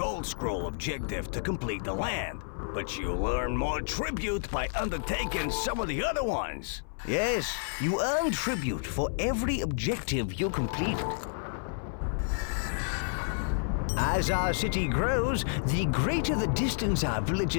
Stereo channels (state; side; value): silent; right; 58 dB below the other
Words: Scroll objective to complete the land, but you earn more tribute by undertaking some of the other ones. Yes, you earn tribute for every objective you complete. As our city grows, the greater the distance our